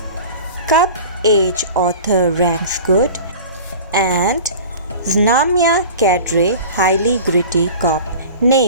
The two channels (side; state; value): both; inverted; correlation -0.38